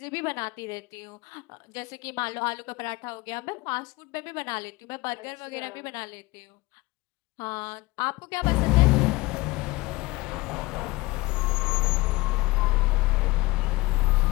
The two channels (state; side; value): quieter; right; 21.5 dB